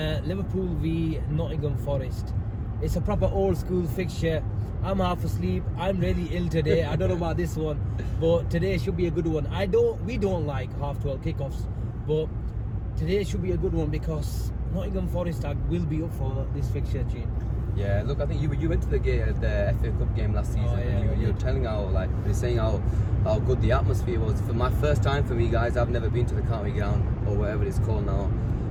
Liverpool v Nottingham Forest. It's a proper old school fixture. I'm half asleep. I'm really ill today. I don't know about this one, but today should be a good one. We don't like half 12 kickoffs, but today should be a good one because Nottingham Forest will be up for this fixture, Jean. Yeah, look, I think you went to the FA Cup game last season. Oh, yeah, and you were telling you're saying how good the atmosphere was. For my first time for me, guys, I've never been to the county ground or whatever it's called now.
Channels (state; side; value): identical; both; correlation 1.00